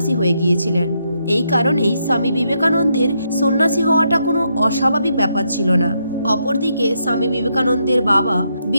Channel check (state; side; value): inverted; both; correlation -0.79